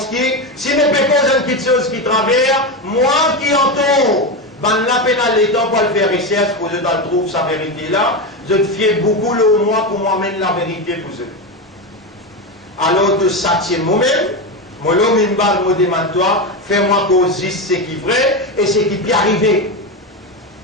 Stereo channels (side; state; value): both; normal; correlation 0.15